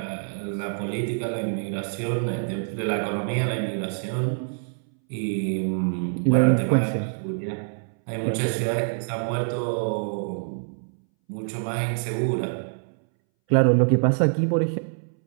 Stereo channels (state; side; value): silent; left; 61 dB below the other